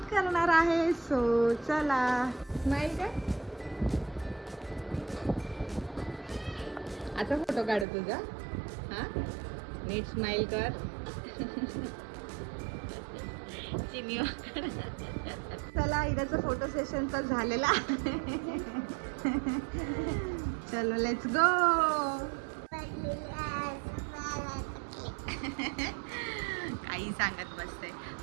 करणार आहे. सो चला. स्माईल का आता फोटो काढू तुझा. हां नीट स्माइल कर. चला इराचा फोटो सेशन तर झालेला आहे. चलो लेट्स गो. काही सांगत बसते.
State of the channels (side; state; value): left; drops out; at 7.9 s